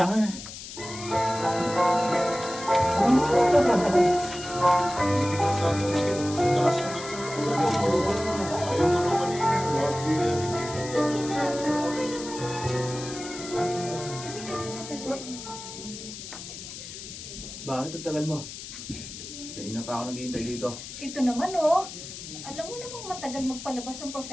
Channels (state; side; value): noise; left; hiss, 11 dB below the sound